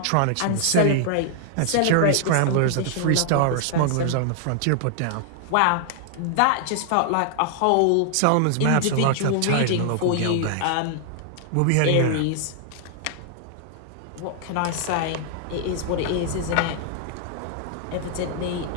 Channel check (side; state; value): both; different; correlation 0.00